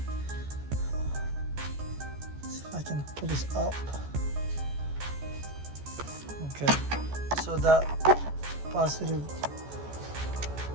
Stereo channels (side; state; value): left; late; 14 ms